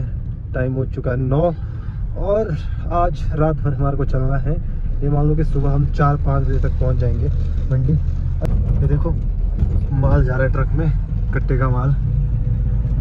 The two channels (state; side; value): identical; both; correlation 1.00